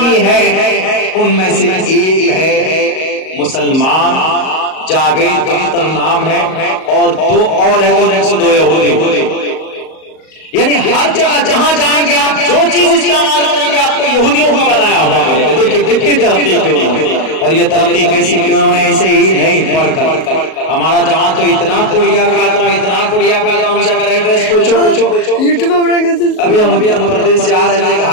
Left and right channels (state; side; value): late; right; 38 ms